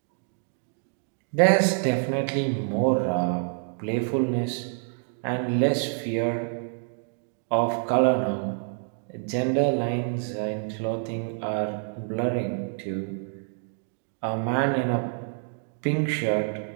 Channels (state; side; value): silent; left; 60 dB below the other